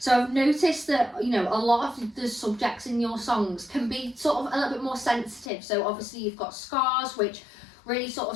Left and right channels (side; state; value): right; drops out; at 5.5 s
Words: I've noticed that, you know, a lot of the subjects in your songs can be sort of a little bit more sensitive. So obviously you've got Scars, which really sort of